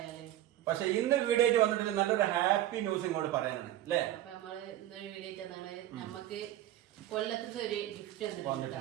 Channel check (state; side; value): quieter; left; 13.3 dB